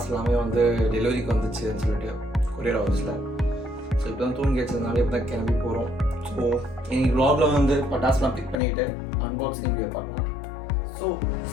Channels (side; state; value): right; drops out; at 8.6 s